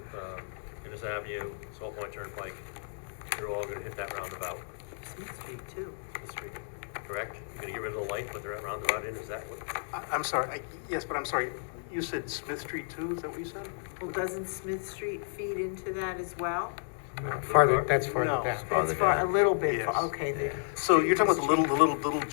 Innis Avenue, Salt Point Turnpike. You're all gonna hit that roundabout, Smith Street too. the street, correct? You're gonna get rid of the light, put the roundabout in, is that what? I'm sorry, yes, but I'm sorry, you said Smith Street too, is that what you said? Well, doesn't Smith Street feed into that as well? Farther, that's farther No. down. That's far, a little bit, Yes. okay, So you're talking about the little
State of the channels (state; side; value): silent; right; 56 dB below the other